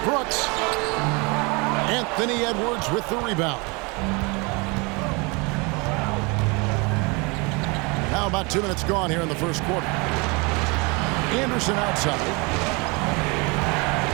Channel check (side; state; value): left; quieter; 28.7 dB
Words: Brooks. Anthony Edwards with the rebound. Now about 2 minutes gone here in the first quarter. Anderson outside.